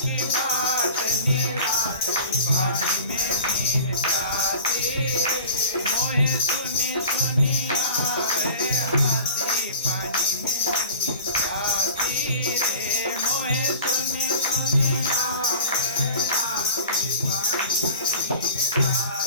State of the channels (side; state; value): both; inverted; correlation -0.41